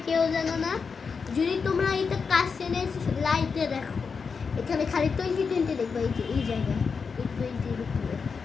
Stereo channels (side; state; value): right; quieter; 5.4 dB